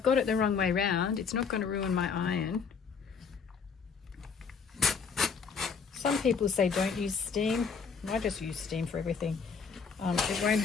got it the wrong way round, it's not going to ruin my iron. Some people say don't use steam. I just use steam for everything. It won't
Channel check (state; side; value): quieter; right; 5.8 dB